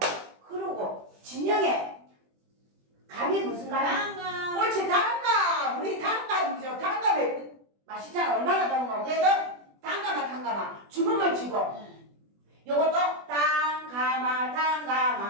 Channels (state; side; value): late; left; 20 ms